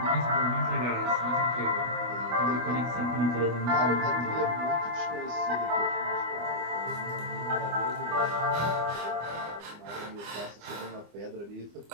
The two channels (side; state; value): left; late; 25 ms